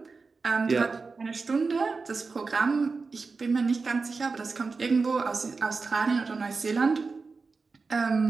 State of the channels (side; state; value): left; quieter; 4.3 dB